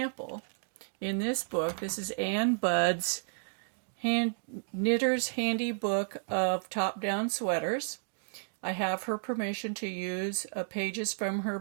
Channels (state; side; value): silent; left; digital silence